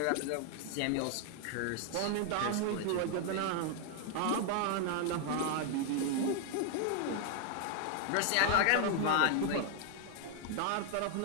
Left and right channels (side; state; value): both; different; correlation 0.00